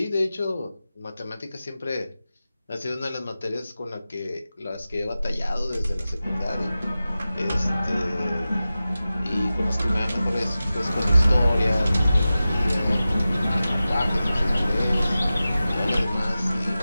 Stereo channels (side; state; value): both; inverted; correlation -0.95